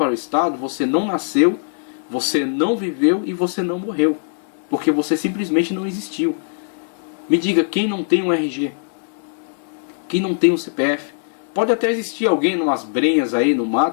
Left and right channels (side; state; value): right; silent; digital silence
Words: o Estado, você não nasceu, você não viveu e você não morreu, porque você simplesmente não existiu. Me diga, quem não tem um RG? Quem não tem um CPF? Pode até existir alguém numas brenhas aí no